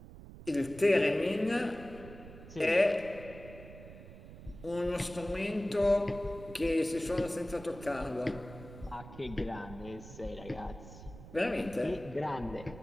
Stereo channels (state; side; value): noise; right; rumble, 15 dB below the sound